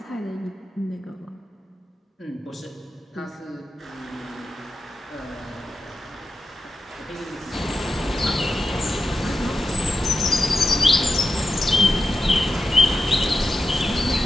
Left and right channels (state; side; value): normal; both; correlation 0.90